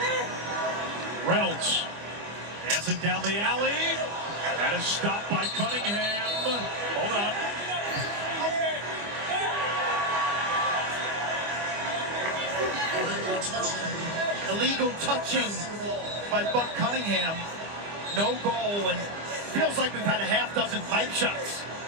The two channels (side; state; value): left; late; 25 ms